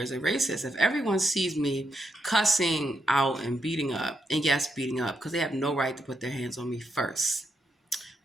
as a racist. If everyone sees me cussing out and beating up, and yes, beating up, because they have no right to put their hands on me first.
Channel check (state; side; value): normal; both; correlation 0.81